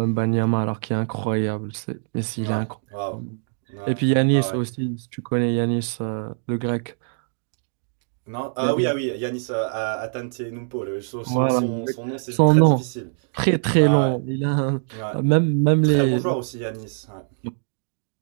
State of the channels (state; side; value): silent; left; digital silence